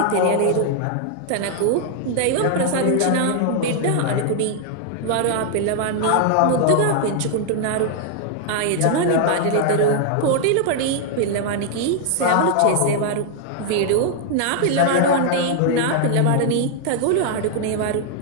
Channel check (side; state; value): both; different; correlation 0.00